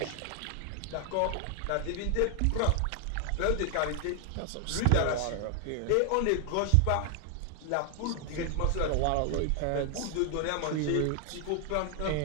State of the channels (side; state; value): both; different; correlation 0.00